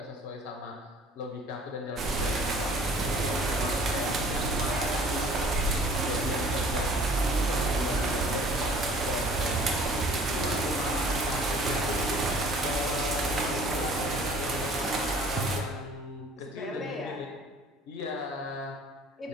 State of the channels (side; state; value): both; normal; correlation 0.51